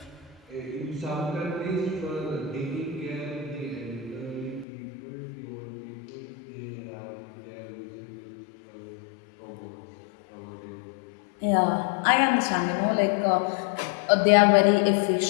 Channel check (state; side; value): drops out; right; at 4.7 s